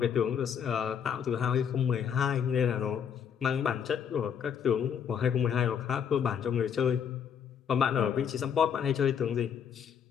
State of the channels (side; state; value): right; quieter; 7.8 dB